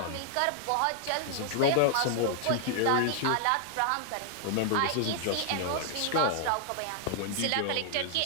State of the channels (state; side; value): different; both; correlation 0.00